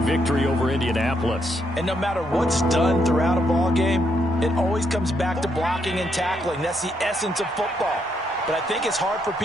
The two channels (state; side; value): normal; both; correlation 0.76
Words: victory over Indianapolis. And no matter what's done throughout a ball game, it always comes back to blocking and tackling. That's the essence of football. but I think it's hard for